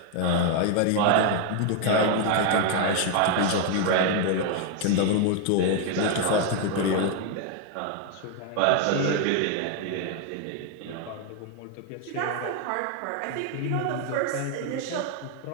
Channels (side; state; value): both; different; correlation 0.01